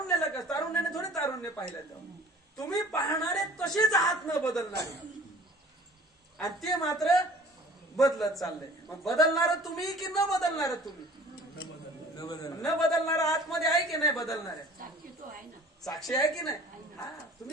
का? तारुण्याने थोडे तारुण्य पाहिलं. तुम्ही पाहणारे तसेच आहात न बदलणारे आणि ते मात्र बदलत चाललंय. मग बदलणार तुम्ही की न बदलणार तुम्ही? न बदलणार आतमध्ये आहे की नाही? बदलणारे साक्षी आहे की नाही? हा,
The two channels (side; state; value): both; normal; correlation 0.48